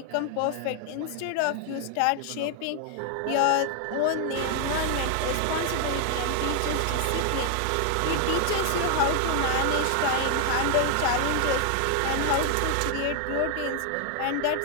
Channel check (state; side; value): different; both; correlation 0.00